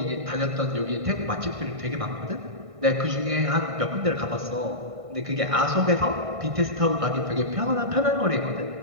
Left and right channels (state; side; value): late; left; 1.6 ms